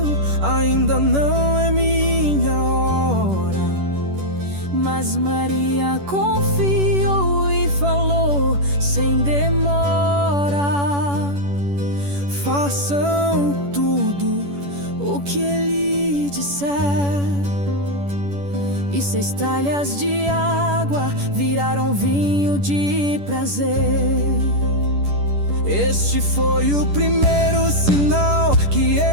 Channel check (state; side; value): late; left; 10 ms